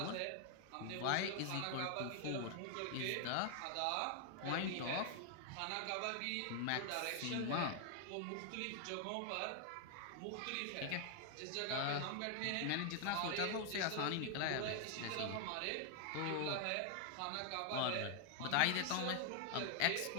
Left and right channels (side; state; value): both; different; correlation 0.00